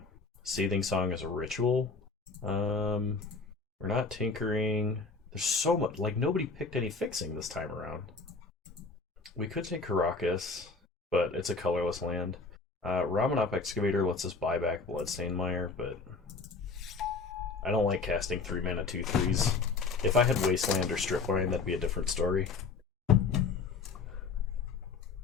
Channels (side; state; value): right; quieter; 4.4 dB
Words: Seething Song is a ritual. We're not tinkering. There's so much. Like, nobody picked any fixing this time around. We could take Caracas, but it's a colorless land. Ramanop Excavator lets us buy back Bloodstained Mire, but I don't like casting 3 mana 2/3s. If I had Wasteland or Stripline, that'd be a different story.